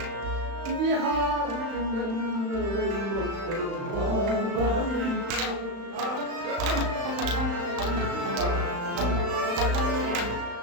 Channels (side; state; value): left; late; 35 ms